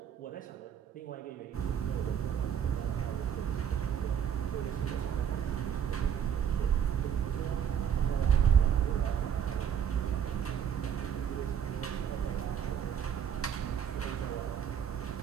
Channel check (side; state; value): left; quieter; 8.6 dB